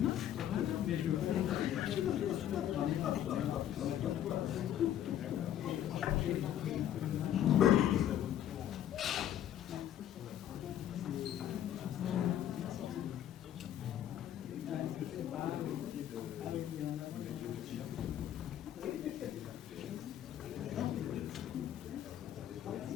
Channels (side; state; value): right; quieter; 11.0 dB